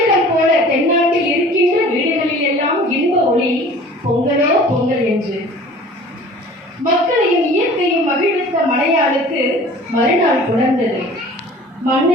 போல தென்னாட்டில் இருக்கின்ற வீடுகளில் எல்லாம் இன்ப ஒளி பொங்கலோ பொங்கல் என்று. மக்களையும் இயற்கையும் மகிழ்வித்த மலையாளுக்கு மறுநாள் புணர்ந்தது.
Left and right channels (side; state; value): both; normal; correlation 0.46